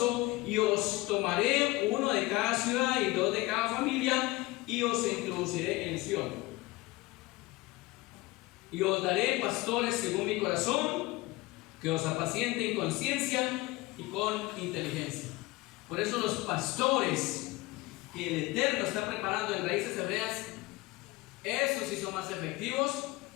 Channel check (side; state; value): right; quieter; 20.9 dB